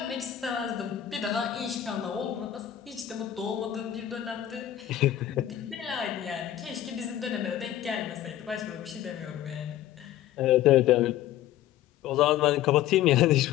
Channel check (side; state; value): right; quieter; 12.1 dB